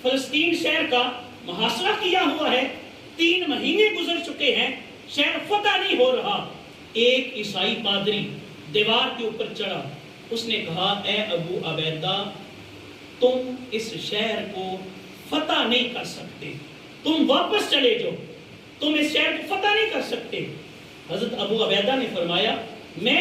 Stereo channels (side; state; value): both; identical; correlation 1.00